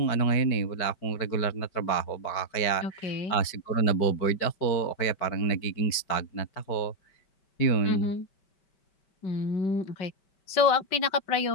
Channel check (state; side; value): late; right; 5.2 ms